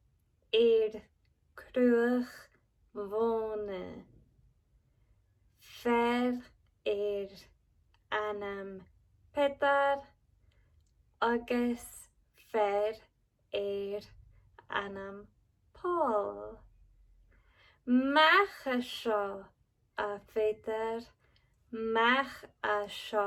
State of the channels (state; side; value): identical; both; correlation 1.00